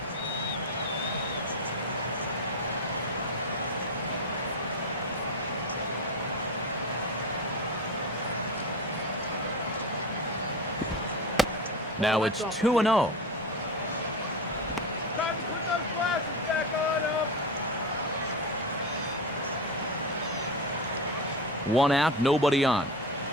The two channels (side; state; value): both; normal; correlation 0.21